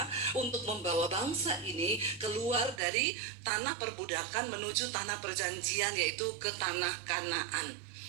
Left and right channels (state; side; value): drops out; left; at 2.8 s